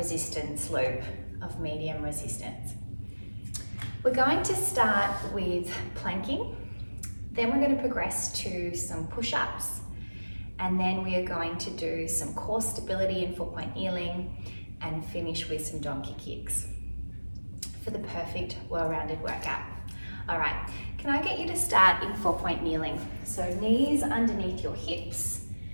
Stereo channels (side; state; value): both; inverted; correlation -1.00